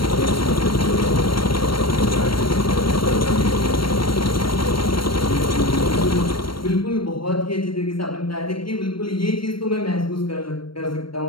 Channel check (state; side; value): late; right; 0.73 ms